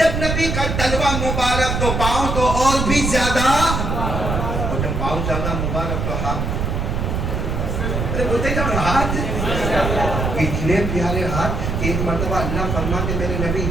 نبی کا تلوہ مبارک تو پاؤں تو اور بھی زیادہ, اور جب پاؤں زیادہ مبارک تو ہاتھ. بولتے جب ہاتھ اتنے پیارے ہاتھ. ایک مرتبہ اللہ فرماتے میرے نبی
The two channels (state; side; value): noise; right; rumble, 1 dB below the sound